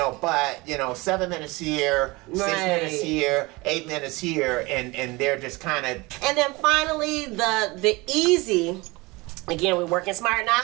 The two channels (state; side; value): quieter; left; 23.6 dB